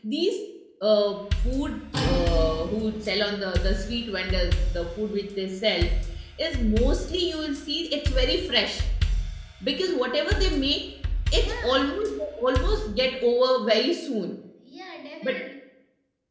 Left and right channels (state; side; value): identical; both; correlation 1.00